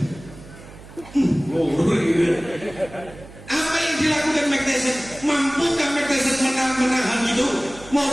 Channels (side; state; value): right; noise; hum, 18 dB below the sound